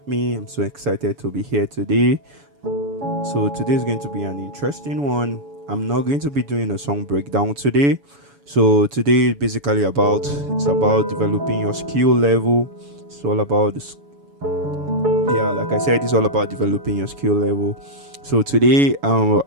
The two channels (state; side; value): late; left; 7.0 ms